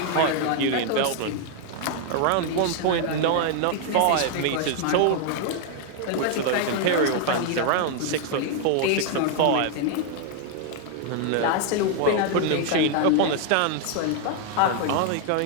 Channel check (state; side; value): different; both; correlation 0.00